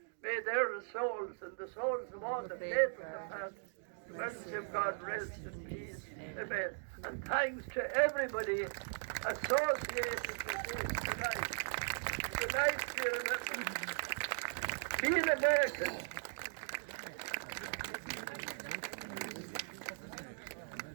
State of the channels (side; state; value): left; silent; digital silence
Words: May their souls and the souls of all the faithful departed, the mercy of God rest in peace. Amen. And thanks to everybody associated with this tonight. Tonight, dear members, be an American.